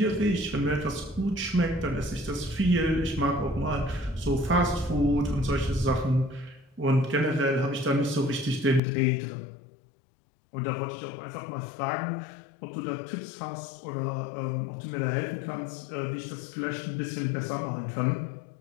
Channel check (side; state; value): right; drops out; at 8.8 s